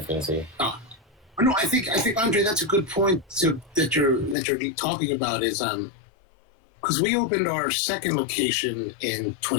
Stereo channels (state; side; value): drops out; right; at 4.4 s